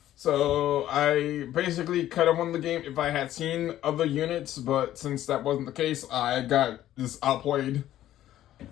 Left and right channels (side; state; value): right; quieter; 13.0 dB